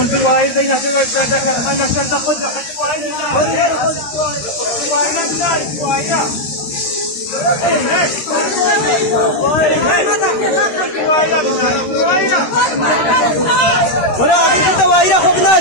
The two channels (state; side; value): late; right; 13 ms